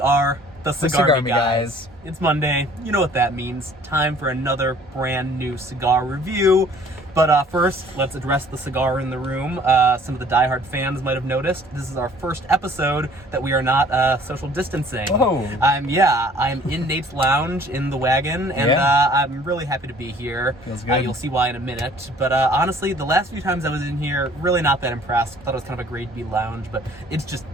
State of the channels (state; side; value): normal; both; correlation 0.54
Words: the Cigarmy guys. It's Monday. You know what that means. Time for another brand new cigar review. But first, let's address the cigar in the room. Some of the diehard fans might have noticed this is our first episode that we are not social distancing. Whoa. I'm in Nate's lounge in the wagon, and I'm really happy to be here. Feels good. You'll see why in a minute. But honestly, the last few times I was in here, really not that impressed. Thought it was kind of a grade B lounge, but it's just